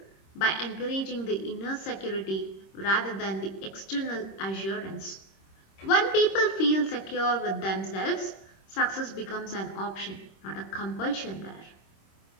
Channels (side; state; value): right; late; 26 ms